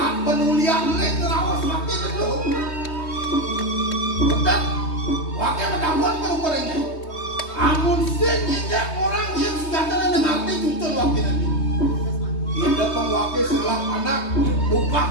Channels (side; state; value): right; late; 3.2 ms